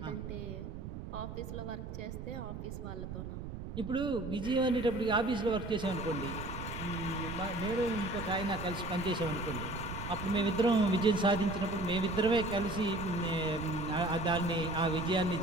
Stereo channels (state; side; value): noise; right; rumble, 8 dB below the sound